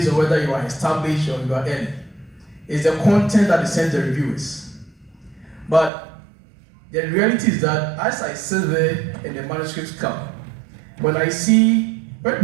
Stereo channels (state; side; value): drops out; left; at 5.9 s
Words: on whether you are established or you are early. It's the content that is sent to the reviewers. But the reality is that as I sit there and the manuscripts come, when I see,